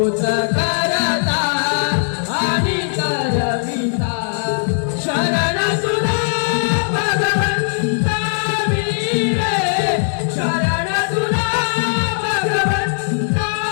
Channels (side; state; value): right; silent; 67 dB below the other